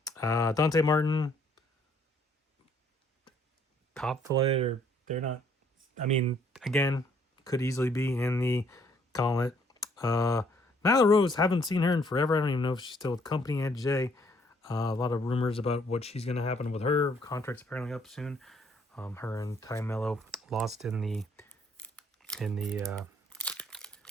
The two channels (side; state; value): both; normal; correlation 0.65